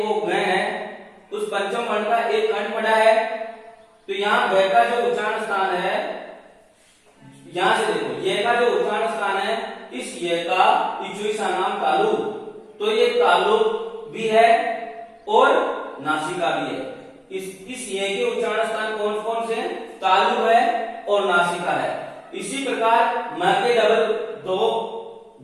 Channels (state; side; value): identical; both; correlation 1.00